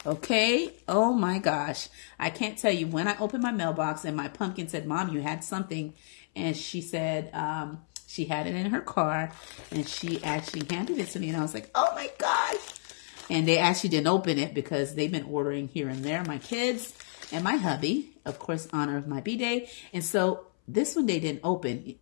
Okay, oh my gosh. I can't tell you, when I opened my mailbox and my pumpkin said, "Mom, you had something." And she said she had it in her car and she actually handed it to me. And I was like, oh my gosh. And they actually didn't open it because they've been ordering here and there. My kids and my hubby, of course, honor of my B-Day. And so this one they didn't open,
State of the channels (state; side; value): silent; right; 58 dB below the other